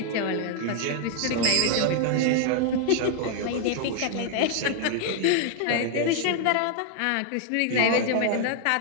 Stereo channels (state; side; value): different; both; correlation 0.00